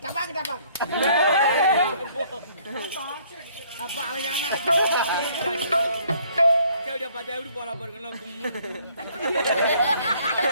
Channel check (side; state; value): both; inverted; correlation -0.61